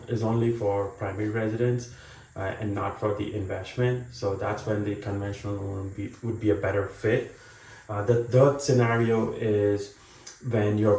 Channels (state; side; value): identical; both; correlation 1.00